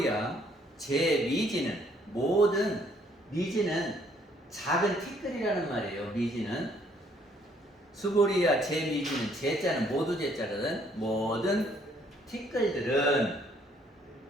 제 미지는 모든 미지는 작은 티끌이라는 말이에요. 미지는 수보리야 제 미지는 제자는 모두 제자거든. 모든 티끌들은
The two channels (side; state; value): both; normal; correlation 0.65